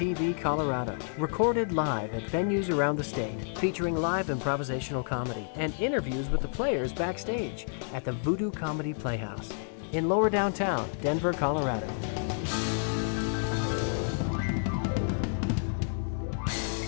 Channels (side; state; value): right; silent; digital silence